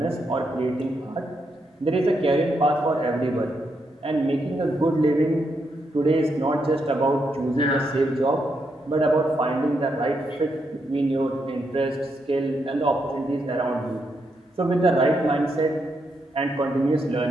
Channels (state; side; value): normal; both; correlation 0.80